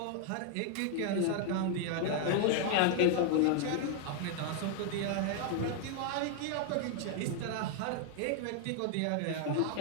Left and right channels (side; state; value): both; different; correlation 0.00